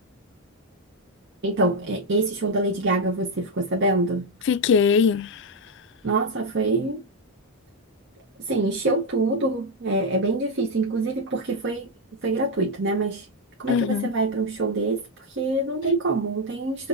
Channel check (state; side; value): normal; both; correlation 0.04